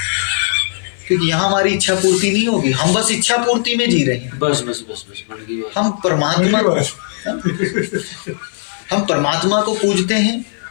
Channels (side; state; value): right; silent; 56 dB below the other